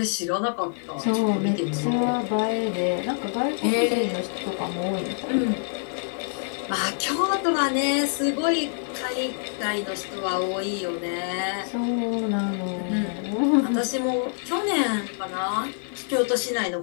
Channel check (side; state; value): right; silent; digital silence